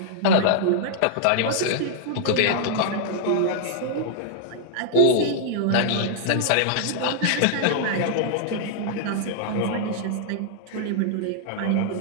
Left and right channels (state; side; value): different; both; correlation -0.01